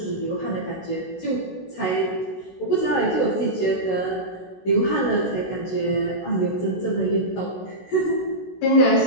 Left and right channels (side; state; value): right; late; 16 ms